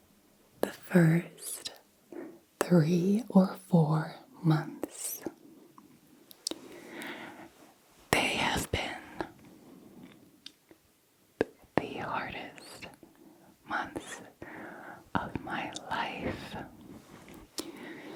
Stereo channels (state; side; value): identical; both; correlation 1.00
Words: The first 3 or 4 months, they have been the hardest months of my life.